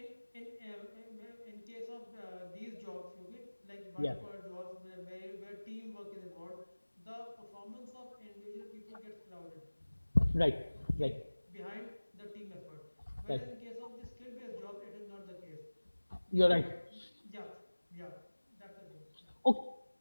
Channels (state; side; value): inverted; both; correlation -1.00